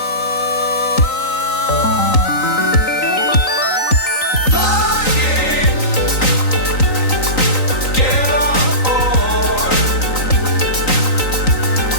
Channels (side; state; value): right; late; 3.9 ms